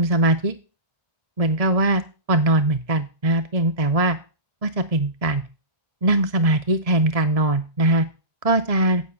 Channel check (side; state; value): left; late; 1.7 ms